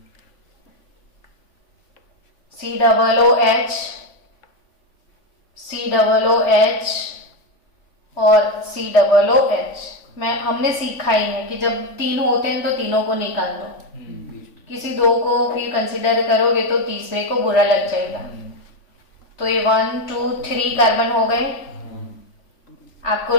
COOH और COOH। हमने सीखा ही है कि जब 3 होते हैं तो तीनों को निकाल दो, किसी 2 को फिर कंसिडर करोगे तो तीसरे को बुरा लग जाएगा। तो ये 1 2 3 कार्बन हो गए। आपको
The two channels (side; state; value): right; late; 3.5 ms